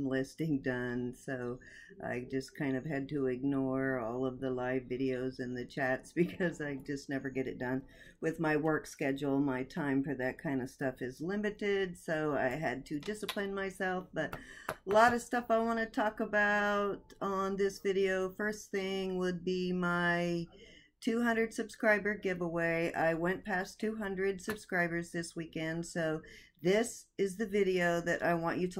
listing done, so I just kind of had to ignore all of the live videos and the chats because I just never get it done. With my work schedule, my time for that kind of stuff is limited, so I had to discipline myself, but a lot of stuff I want to talk about on this video. First thing would be my 200 subscriber giveaway. I went past 200 subscribers this weekend, so this is the video that I want you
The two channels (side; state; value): both; identical; correlation 1.00